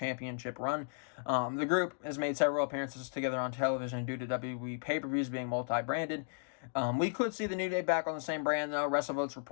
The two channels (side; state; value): right; silent; digital silence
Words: run. The group has made several appearances together on television due to WWE pay-per-views being multi-branded. We could see the New Day back on the same brand, though. WrestleVotes